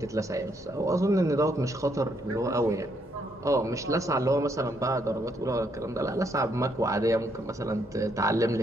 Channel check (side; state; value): both; normal; correlation 0.73